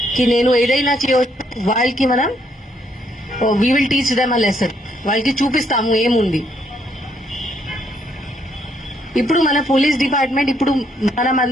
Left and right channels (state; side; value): normal; both; correlation 0.72